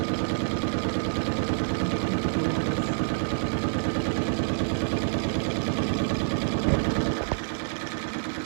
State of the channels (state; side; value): silent; left; digital silence